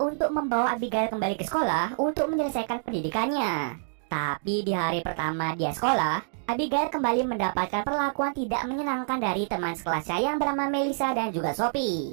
untuk membawa Abigail kembali ke sekolah untuk menyelesaikan pendidikannya. Tapi di hari pertama dia sekolah, Abigail kembali mendapatkan perlakuan tidak menyenangkan dari teman sekelasnya yang bernama Melissa dan juga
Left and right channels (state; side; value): silent; left; digital silence